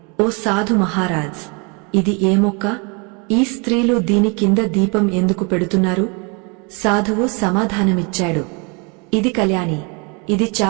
ఓ సాధు మహారాజ్, ఇది ఏ మొక్క? ఈ స్త్రీలు దీని కింద దీపం ఎందుకు పెడుతున్నారు? సాధువు సమాధానమిచ్చాడు, ఇది కళ్యాణి. ఇది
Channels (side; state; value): left; quieter; 32.3 dB